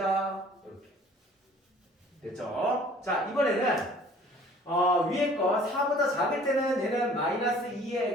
이렇게. 됐죠? 자, 이번에는 위에 거 4보다 작을 때는 얘는 마이너스 2의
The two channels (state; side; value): normal; both; correlation 0.52